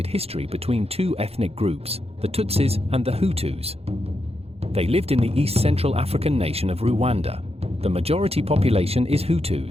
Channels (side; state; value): left; late; 0.29 ms